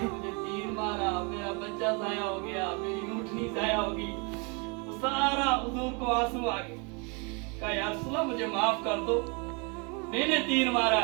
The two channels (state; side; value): quieter; left; 32.4 dB